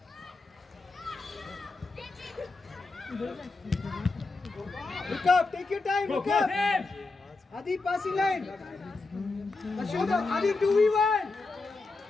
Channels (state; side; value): quieter; right; 3.7 dB